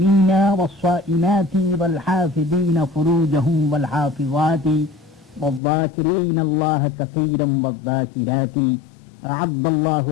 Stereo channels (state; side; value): drops out; right; at 5.6 s